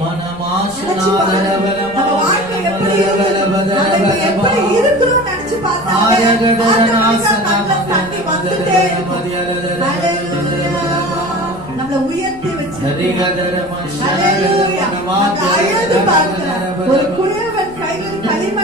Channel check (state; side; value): noise; left; rumble, 21 dB below the sound